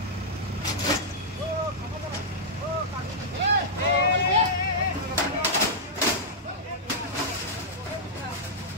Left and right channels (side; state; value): both; normal; correlation -0.09